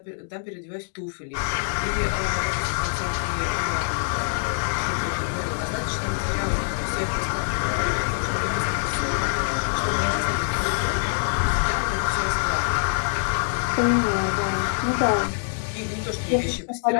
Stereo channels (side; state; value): right; silent; digital silence